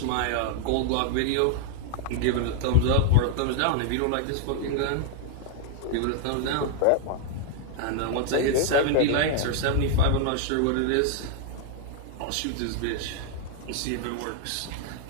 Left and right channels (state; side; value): different; both; correlation 0.00